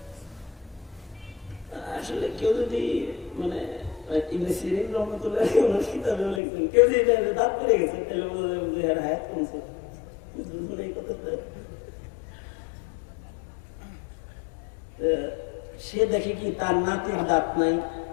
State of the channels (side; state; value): right; drops out; at 6.4 s